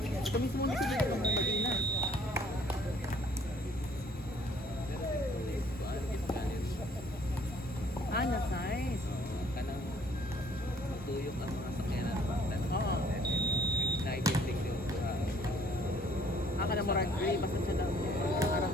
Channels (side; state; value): both; normal; correlation 0.60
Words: Ito mismo na sila ng Medina. Ah, na-size. Kanang matuyok ang mga sakyanan. Oo. Naibibig yung Aka na mo rag gray, basta siya lang arang